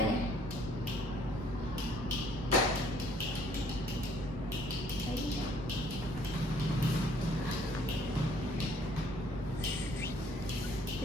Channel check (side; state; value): both; normal; correlation 0.61